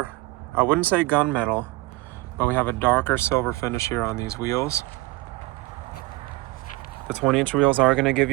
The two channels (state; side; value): quieter; left; 20.9 dB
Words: I wouldn't say gunmetal, but we have a darker silver finish here on these wheels. The 20-inch wheels are going to give